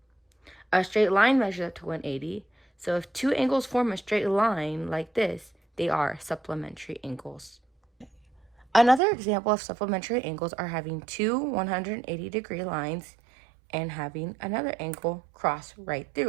A straight line measures up to 180, so if two angles form a straight line like this, they are supplementary angles. Another example of supplementary angles are having two 180-degree lines and having another angle cross right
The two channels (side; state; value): left; drops out; at 9.0 s